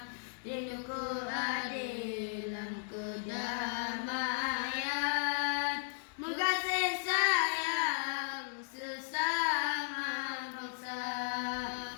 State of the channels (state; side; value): silent; right; digital silence